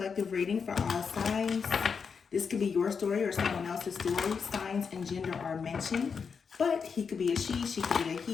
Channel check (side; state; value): right; quieter; 5.9 dB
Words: reading for all signs. This could be your story or someone else's story. Signs and gender are mentioned, but he could be a she could be a